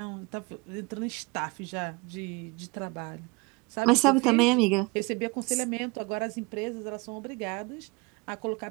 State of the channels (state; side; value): quieter; left; 25.8 dB